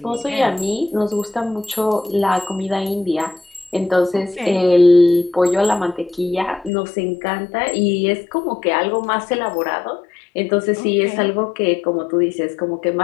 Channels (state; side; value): drops out; right; at 6.7 s